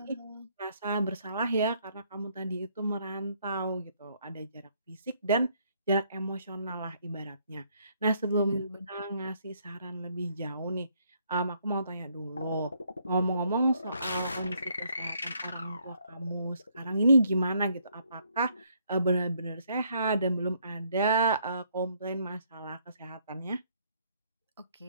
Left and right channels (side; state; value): both; inverted; correlation -0.69